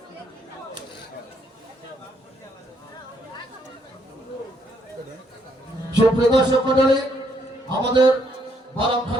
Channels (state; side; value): normal; both; correlation 0.72